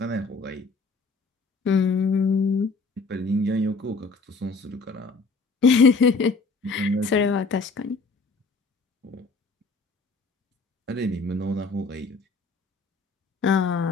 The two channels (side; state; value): right; quieter; 3.9 dB